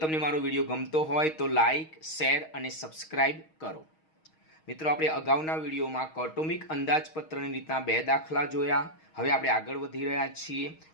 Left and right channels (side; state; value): right; late; 6.4 ms